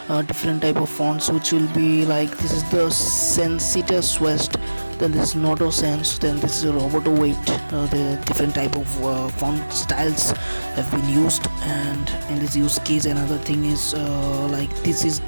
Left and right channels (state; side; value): inverted; both; correlation -1.00